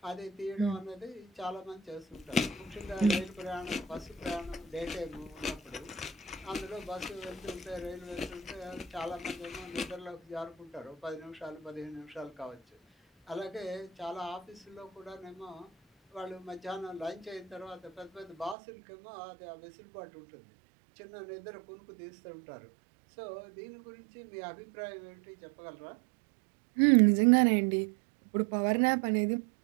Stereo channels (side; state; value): left; drops out; at 18.6 s